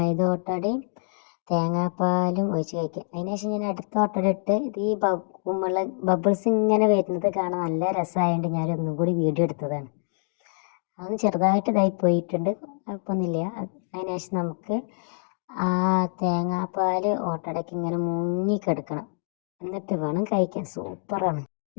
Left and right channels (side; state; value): right; silent; 61 dB below the other